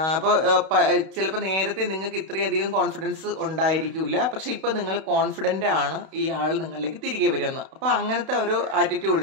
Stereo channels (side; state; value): left; late; 31 ms